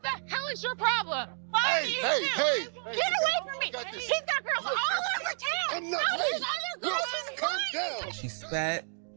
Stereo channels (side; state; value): left; silent; digital silence